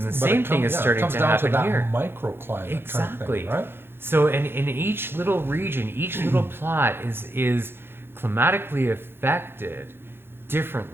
same thing is starting to happen here. Microclimate Exactly. Kind of thing, right? So in each little region, each little plot is climatically affected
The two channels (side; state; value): left; late; 0.11 ms